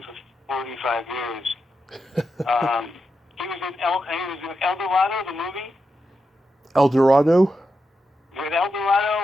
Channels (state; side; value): normal; both; correlation 0.87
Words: for 45 years. He was in El Dorado, the movie. El Dorado? With El